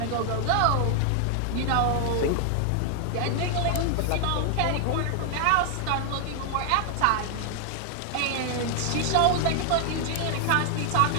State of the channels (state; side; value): different; both; correlation 0.00